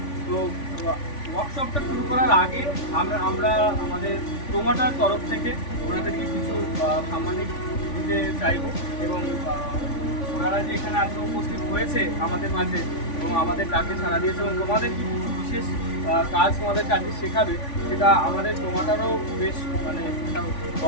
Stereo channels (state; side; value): late; right; 3.5 ms